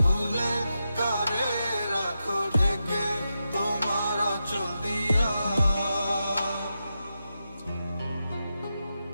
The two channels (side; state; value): both; inverted; correlation -0.88